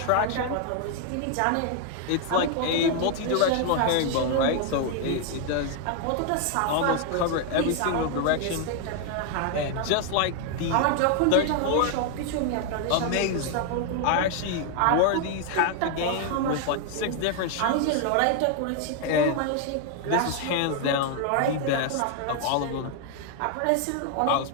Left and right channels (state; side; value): different; both; correlation 0.00